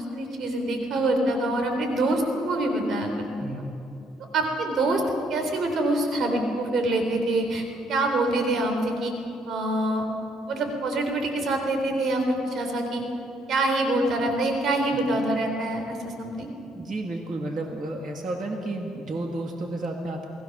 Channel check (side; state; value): both; normal; correlation 0.69